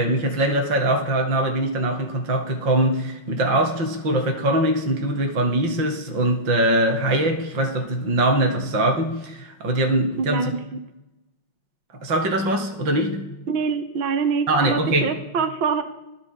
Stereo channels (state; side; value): late; left; 5.8 ms